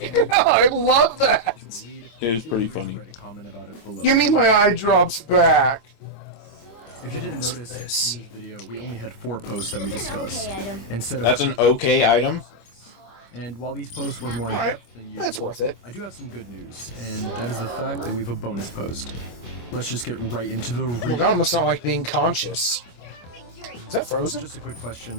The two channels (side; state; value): right; late; 25 ms